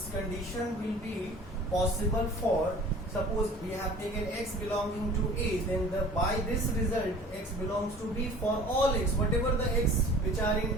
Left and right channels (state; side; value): normal; both; correlation 0.46